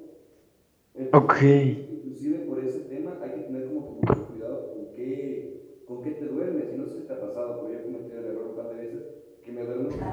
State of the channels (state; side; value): identical; both; correlation 1.00